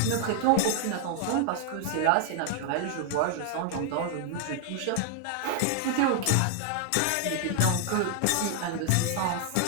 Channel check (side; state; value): both; different; correlation 0.00